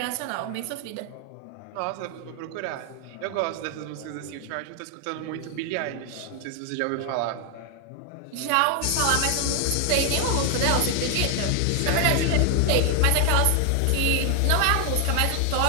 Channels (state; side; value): different; both; correlation 0.00